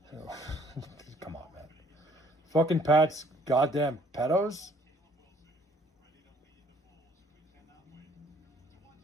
on, man. Fucking Pat's goddamn pedos?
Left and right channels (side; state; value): both; normal; correlation 0.60